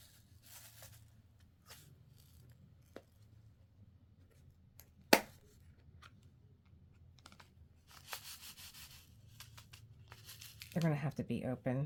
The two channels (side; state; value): both; identical; correlation 1.00